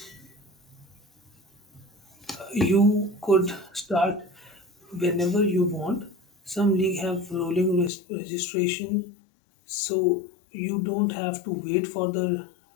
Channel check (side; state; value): right; drops out; at 7.9 s